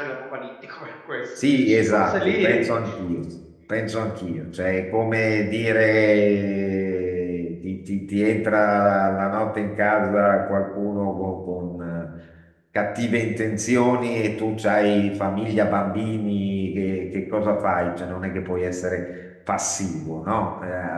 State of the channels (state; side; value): identical; both; correlation 1.00